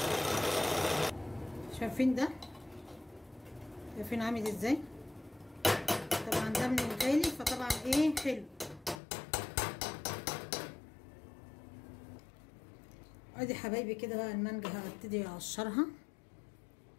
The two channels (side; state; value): right; drops out; at 9.0 s